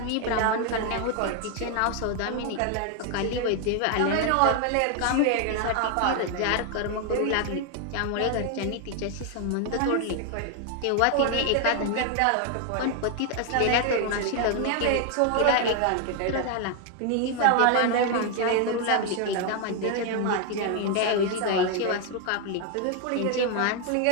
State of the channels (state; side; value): different; both; correlation 0.00